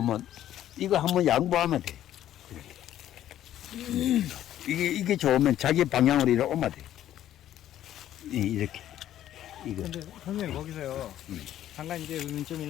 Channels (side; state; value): right; quieter; 12.0 dB